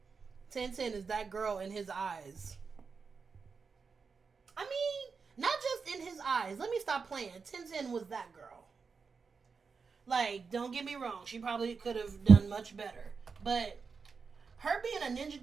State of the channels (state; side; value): quieter; left; 5.2 dB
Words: Tenten is that girl in his eyes. I mean, not just in his eyes. Let me stop playing. Tenten was that girl. Like, don't get me wrong. She probably could have done much better. But her being a Ninja